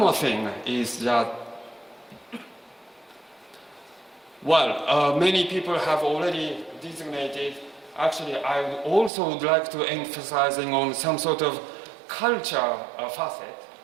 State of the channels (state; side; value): drops out; left; at 9.1 s